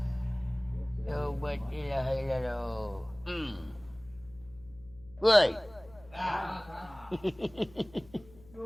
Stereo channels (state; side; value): noise; left; hum, 23 dB below the sound